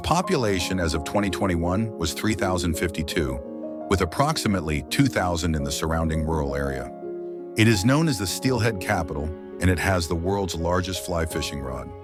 as of 2021 was 3,052, with approximately 2,000 in the surrounding rural area. It is known as the Steelhead Capital, and it has the world's largest fly fishing rod.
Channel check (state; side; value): identical; both; correlation 1.00